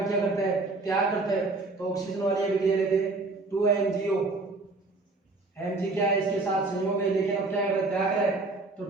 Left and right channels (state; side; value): quieter; left; 3.4 dB